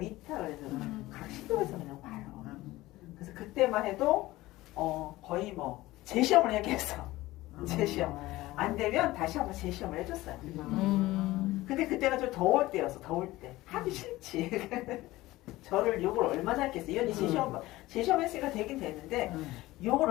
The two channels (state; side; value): quieter; right; 18.0 dB